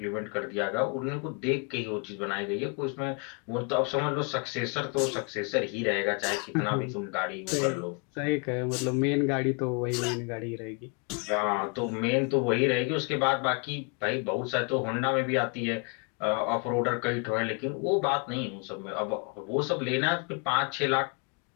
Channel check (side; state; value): right; quieter; 34.3 dB